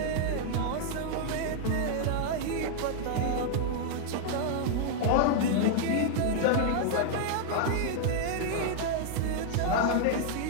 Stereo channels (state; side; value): different; both; correlation -0.01